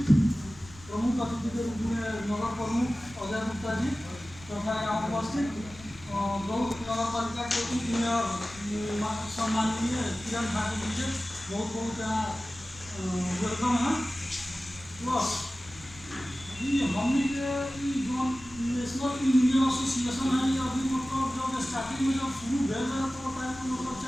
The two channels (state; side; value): noise; left; rumble, 20 dB below the sound